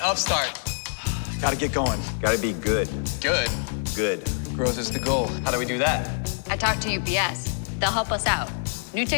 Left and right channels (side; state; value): right; silent; 61 dB below the other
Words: upstart. Gotta get going. Gotta be good. Good. Good. Growth is the goal. How do we do that? I talked to UPS. They'll help us out. New